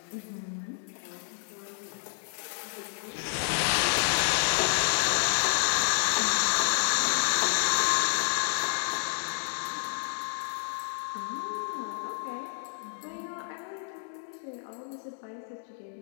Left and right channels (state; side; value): silent; right; digital silence